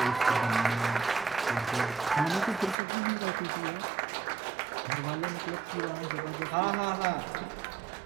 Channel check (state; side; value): drops out; left; at 2.8 s